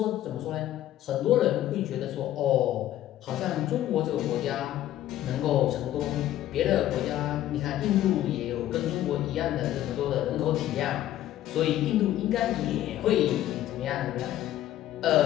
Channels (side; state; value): right; quieter; 13.1 dB